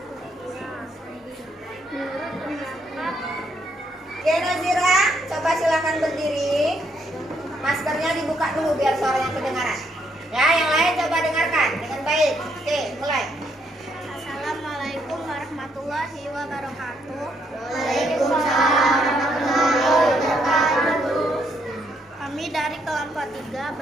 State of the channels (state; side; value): normal; both; correlation 0.73